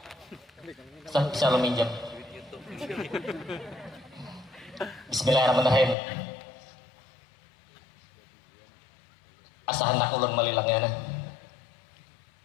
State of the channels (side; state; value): right; drops out; at 6.0 s